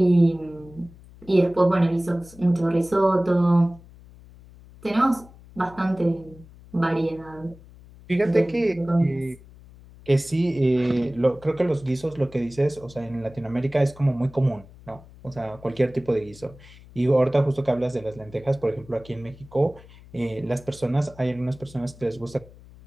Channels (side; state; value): left; noise; hum, 22 dB below the sound